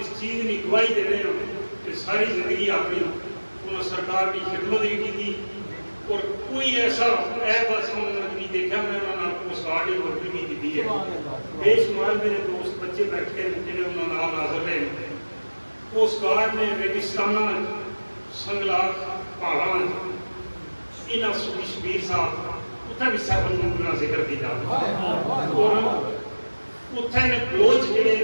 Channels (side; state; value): both; inverted; correlation -1.00